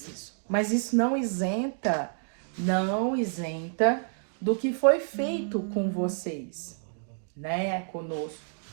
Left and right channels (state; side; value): silent; left; digital silence